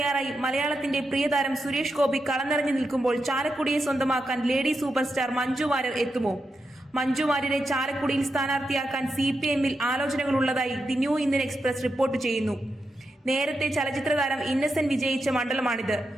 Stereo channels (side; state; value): both; normal; correlation 0.87